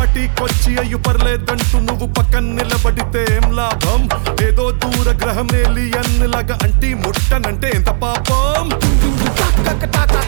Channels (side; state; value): left; silent; 71 dB below the other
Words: అయ్యు పర్లేదంటూ నువ్వు పక్కన నిలబడితే ఏం లాభం? ఏదో దూర గ్రహం ఏలియన్ లాగా అంటి ముట్టనంటే ఎంత పాపం?